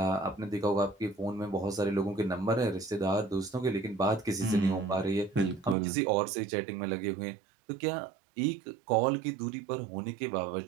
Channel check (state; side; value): drops out; left; at 5.8 s